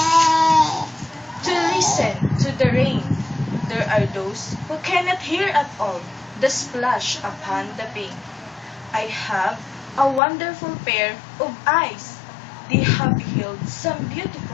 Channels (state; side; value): drops out; right; at 10.2 s